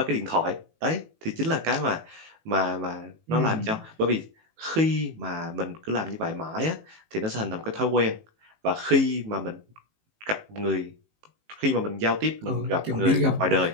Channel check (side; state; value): left; late; 18 ms